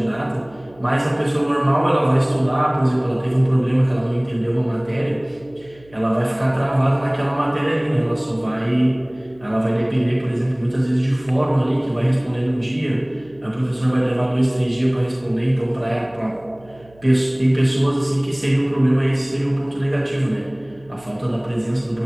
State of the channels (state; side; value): noise; right; hum, 27 dB below the sound